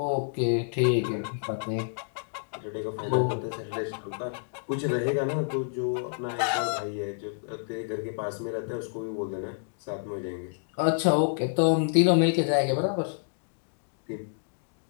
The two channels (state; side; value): silent; right; digital silence